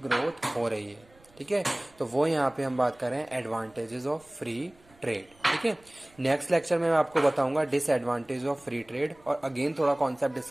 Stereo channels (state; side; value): noise; right; rumble, 29 dB below the sound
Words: ग्रोथ हो रही है, ठीक है। तो वो यहाँ पे हम बात कर रहे हैं एडवांटेजेस ऑफ फ्री ट्रेड, ठीक है। नेक्स्ट लेक्चर में मैं आपको बताऊंगा डिसएडवांटेज ऑफ फ्री ट्रेड, और अगेन थोड़ा कॉन्सेप्ट